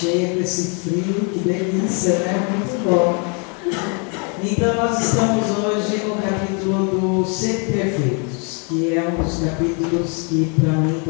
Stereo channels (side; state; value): right; quieter; 35.7 dB